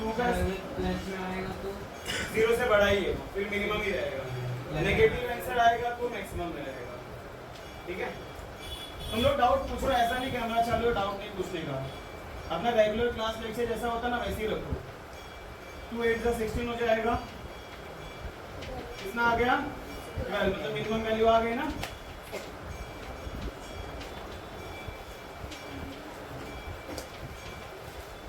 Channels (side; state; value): both; identical; correlation 1.00